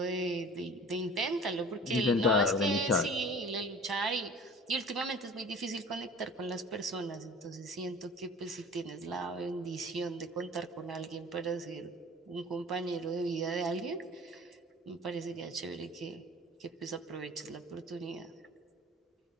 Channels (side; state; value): both; normal; correlation 0.44